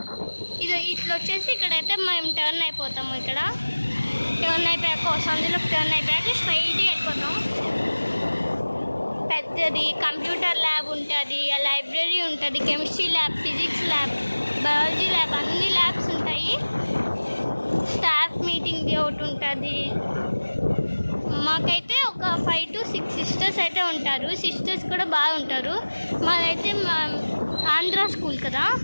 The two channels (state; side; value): inverted; both; correlation -1.00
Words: ఇది ఇట్లా వచ్చేసి ఇక్కడైతే మేము టర్న్ అయిపోతాము. ఇక్కడ టర్న్ అయిపోయాక సందులోకి టర్న్ అయిపోయాక స్ట్రైట్గా వెళ్ళిపోతాం. పెద్దది కంప్యూటర్ ల్యాబ్ ఉంటుంది, లైబ్రరీ ఉంటుంది, chemistry lab, physics lab, biology lab, అన్ని ల్యాబ్స్ ఉంటాయి. స్టాఫ్ మీటింగ్ది ఒకటి ఉంటుంది. మాకైతే ఒక 5 to 6 సిస్టర్స్ అయితే ఉంటారు. సిస్టర్స్ కూడా బాగుంటారు. మాదైతే ఆంధ్ర స్కూల్ కదా,